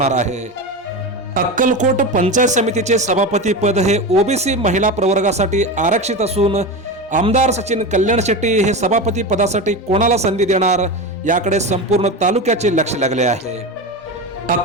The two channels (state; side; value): normal; both; correlation 0.22